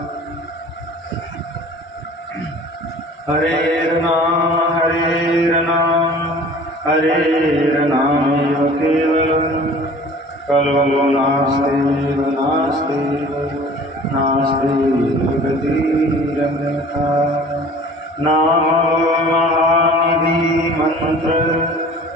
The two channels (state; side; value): normal; both; correlation 0.46